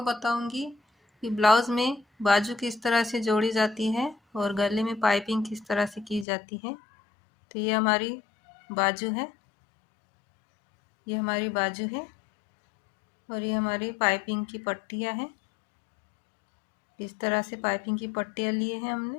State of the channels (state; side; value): drops out; right; at 6.2 s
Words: बताऊंगी कि ब्लाउज़ में बाजू किस तरह से जोड़ी जाती है और गले में पाइपिंग किस तरह से की जाती है। तो ये हमारी बाजू है, ये हमारी बाजू है और ये हमारी पाइपिंग की पट्टियाँ हैं। इस तरह से पाइपिंग की पट्टियाँ लिए हैं